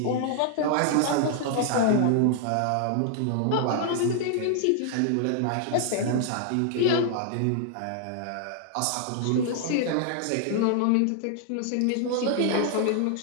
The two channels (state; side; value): different; both; correlation 0.00